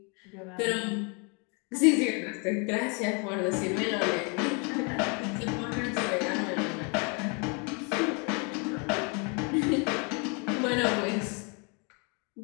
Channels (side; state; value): right; quieter; 33.8 dB